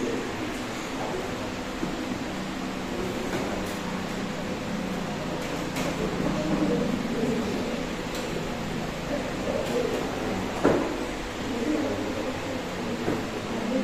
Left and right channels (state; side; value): identical; both; correlation 1.00